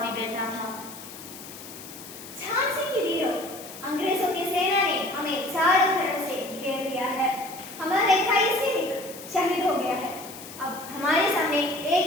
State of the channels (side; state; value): left; noise; hiss, 15 dB below the sound